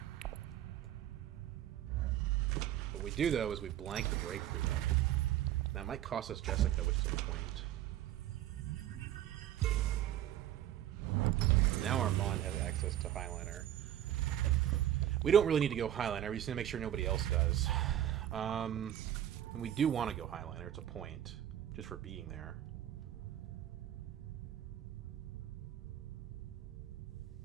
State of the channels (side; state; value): left; quieter; 11.8 dB